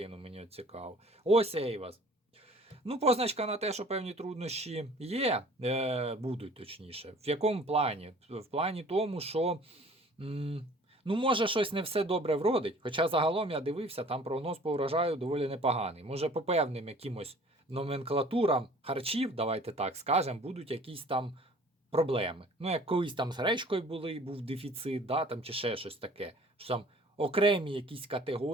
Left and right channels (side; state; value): both; normal; correlation 0.51